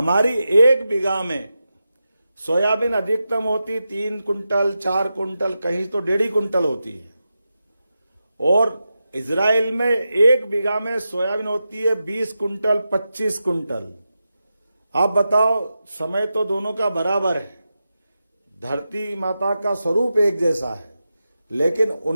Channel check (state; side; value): inverted; both; correlation -0.90